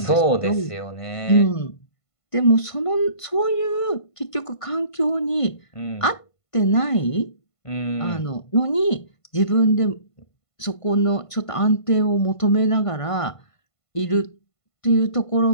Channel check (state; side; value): late; right; 1.5 ms